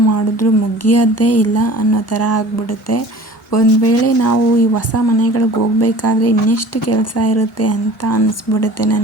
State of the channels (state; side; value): normal; both; correlation 0.44